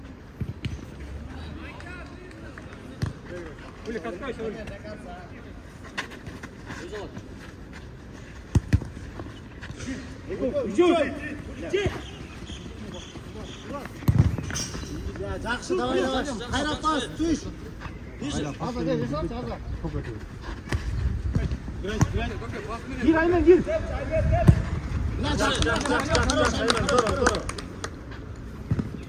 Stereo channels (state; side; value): identical; both; correlation 1.00